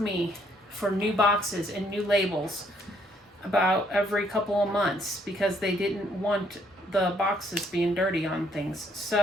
for new boxes and new labels about every couple of months because they didn't want the boxes being dirty on things.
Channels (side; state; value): both; normal; correlation 0.68